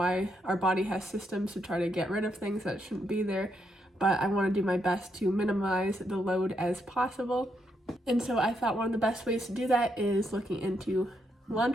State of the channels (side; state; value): both; normal; correlation 0.78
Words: our body has systems to try to get rid of things that shouldn't be there. But I want to do my best to minimize the load as possible. And so I thought one of the best ways to do that is looking into